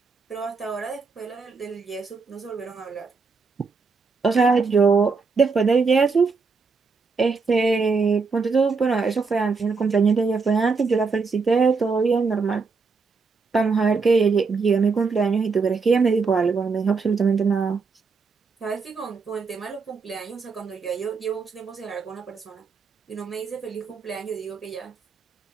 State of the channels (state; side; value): quieter; left; 4.7 dB